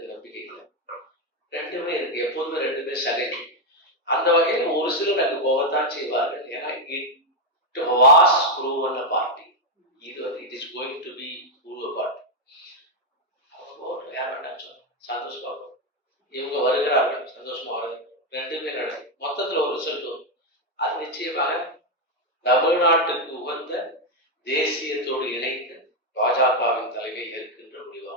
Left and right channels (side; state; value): both; normal; correlation 0.04